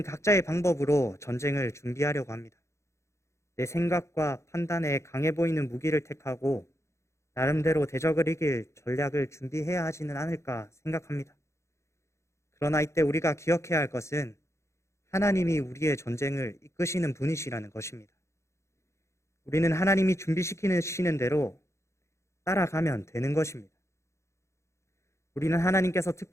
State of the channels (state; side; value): late; right; 0.14 ms